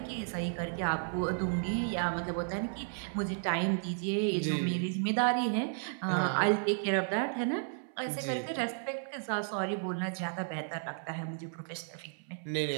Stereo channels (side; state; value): left; silent; 55 dB below the other